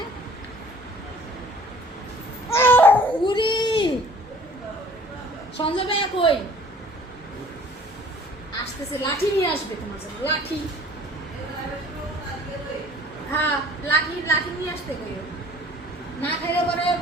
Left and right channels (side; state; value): both; normal; correlation 0.52